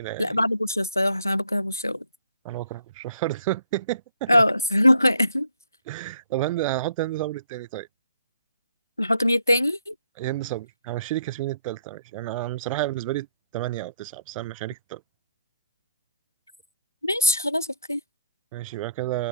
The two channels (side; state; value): both; inverted; correlation -0.67